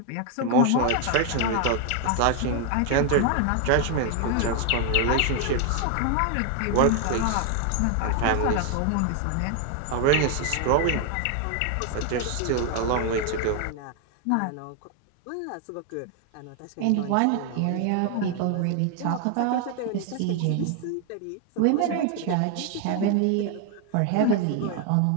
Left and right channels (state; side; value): different; both; correlation 0.01